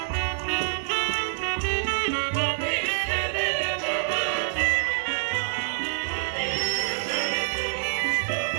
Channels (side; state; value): left; silent; digital silence